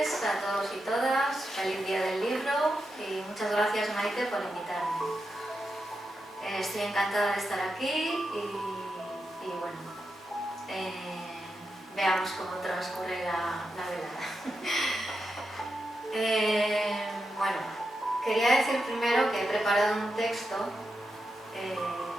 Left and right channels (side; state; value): both; normal; correlation 0.87